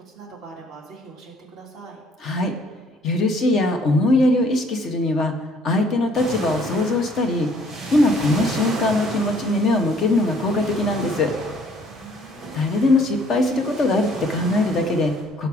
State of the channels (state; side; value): normal; both; correlation 0.61